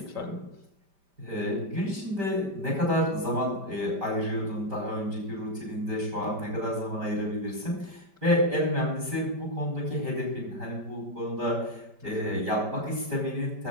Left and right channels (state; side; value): late; left; 5.1 ms